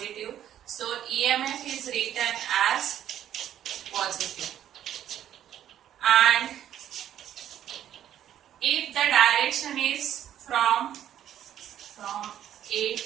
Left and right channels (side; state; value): left; quieter; 11.0 dB